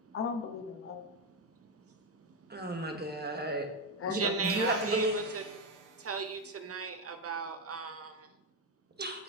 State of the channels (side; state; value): both; normal; correlation 0.07